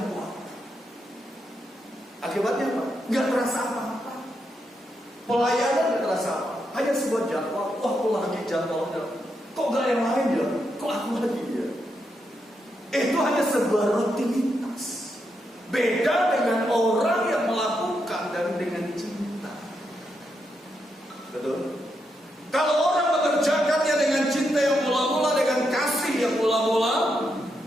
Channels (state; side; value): normal; both; correlation 0.82